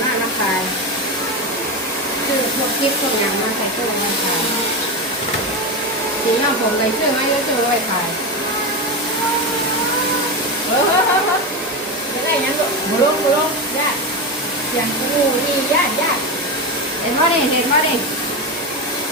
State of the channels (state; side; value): normal; both; correlation 0.17